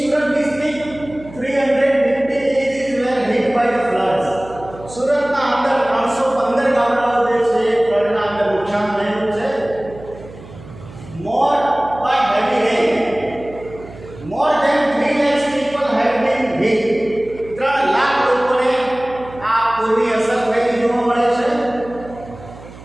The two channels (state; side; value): noise; right; hum, 17 dB below the sound